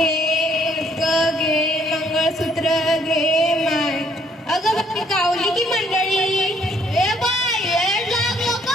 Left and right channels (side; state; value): both; normal; correlation 0.65